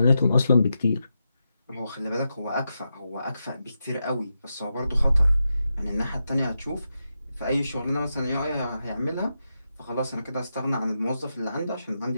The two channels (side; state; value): both; inverted; correlation -0.87